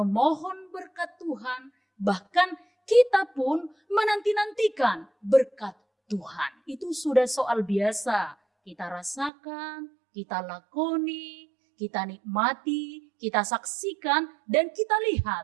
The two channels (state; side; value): drops out; left; at 9.3 s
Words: berkat Tuhan, bahkan kita pun menanti-nantikan berkat Tuhan. Itu sudah soal biasa. Kita rasakan, kita lakoni, kita nikmati, kita saksikan, dan kita lihat